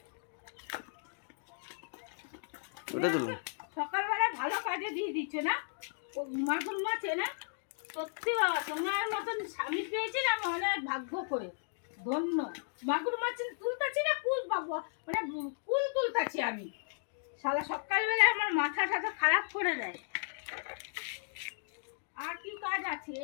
সকালবেলা ভালো কাজে দিয়ে দিচ্ছে না ও মাগুর মাছ এনে। সত্যি বাবা তোমার মতন স্বামী পেয়েছি না আমি অনেক ভাগ্য করে ধন্য। মাগুর মাছ তুলতাছি না কুল বাবা মানে কুল তুলতাছি আমি। শালা সকালবেলা আমার মাথা টাথা খারাপ করে দেয়। আর কি কাজ আছে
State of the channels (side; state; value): right; silent; digital silence